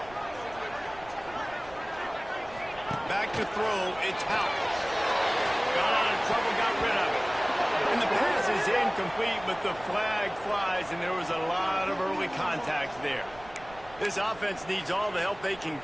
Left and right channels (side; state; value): right; noise; rumble, 21 dB below the sound